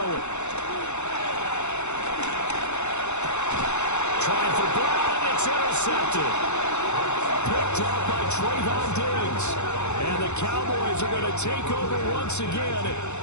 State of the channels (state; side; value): late; right; 0.82 ms